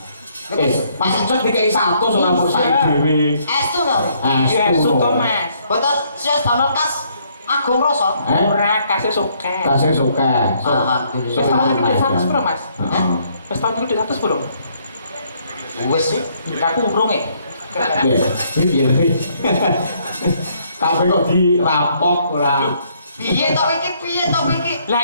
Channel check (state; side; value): inverted; both; correlation -0.68